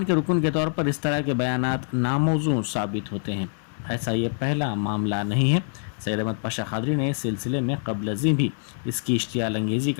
के रुकन के तौर पर इस तरह के बयानात नामौजू साबित होते हैं। ऐसा ये पहला मामला नहीं है। सैयद अहमद पाशा खादरी ने इस सिलसिले में कबल अज़ीं भी इसकी इश्तियाल अंगेज़ी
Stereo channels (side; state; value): right; silent; digital silence